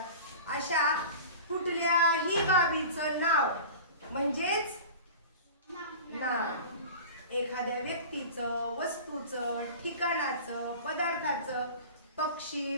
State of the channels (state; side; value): inverted; both; correlation -0.37